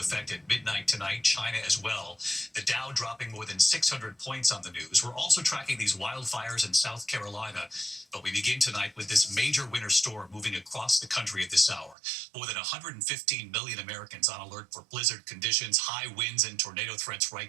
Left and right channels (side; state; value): left; drops out; at 12.0 s